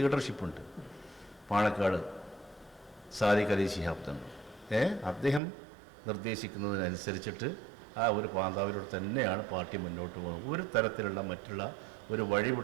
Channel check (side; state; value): left; drops out; at 5.4 s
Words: പാണക്കാട് സാദിഖ് അലി ശിഹാബ് തങ്ങൾ അദ്ദേഹം നിർദ്ദേശിക്കുന്നതിനനുസരിച്ചിട്ട് ആ ഒരു പാന്താവിലൂടെ തന്നെയാണ് പാർട്ടി മുന്നോട്ട് പോകുന്നത്. ഒരു തരത്തിലുള്ള മറ്റുള്ള ഒരു